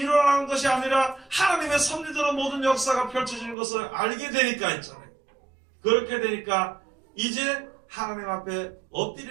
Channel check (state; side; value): drops out; left; at 3.6 s